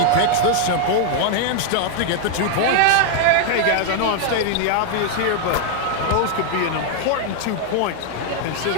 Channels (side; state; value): both; different; correlation 0.00